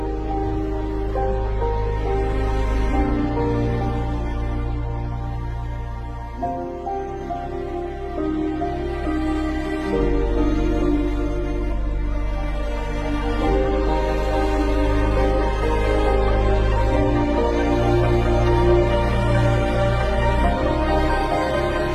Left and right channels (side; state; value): both; identical; correlation 1.00